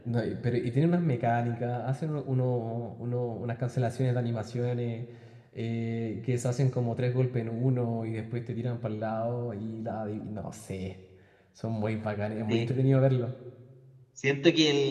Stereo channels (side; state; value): both; identical; correlation 1.00